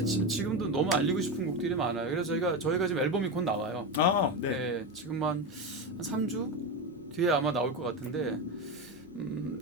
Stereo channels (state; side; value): normal; both; correlation 0.16